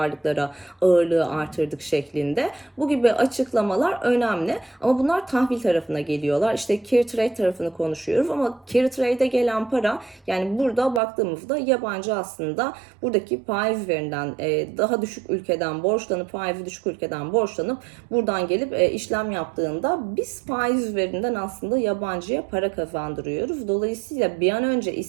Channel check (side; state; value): left; drops out; at 11.0 s